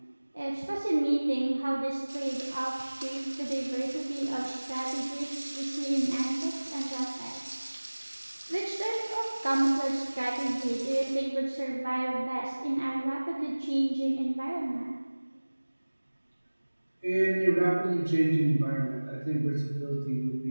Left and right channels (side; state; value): both; inverted; correlation -1.00